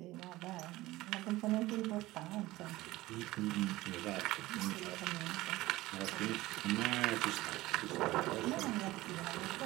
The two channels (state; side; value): quieter; left; 18.2 dB